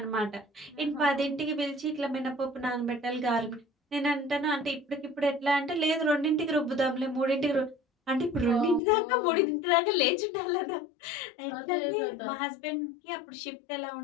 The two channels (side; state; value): right; drops out; at 8.8 s